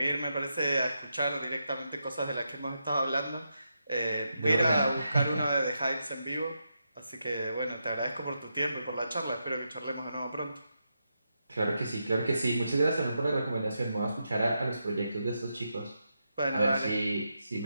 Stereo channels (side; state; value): both; inverted; correlation -0.85